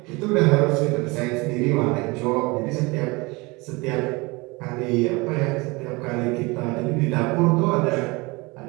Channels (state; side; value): quieter; left; 25.1 dB